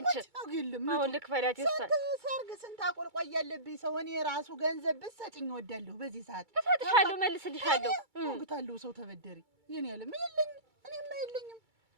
አሁን ልክፈላት። የእሷን ሰርግ ስንት አቆልቋይ ያለብኝ ሰው እኔ ራሱ ገንዘብ ብትሰጭኝ እወዳለሁ። በዚህ ሰዓት እሰጥሻለሁ፣ መልስልሻለሁ። ወግታለሁ። ሰው ተበደሪ የኔ ያለ ምን የለኝም፣ እኔማ የለኝም።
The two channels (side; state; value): left; late; 2.3 ms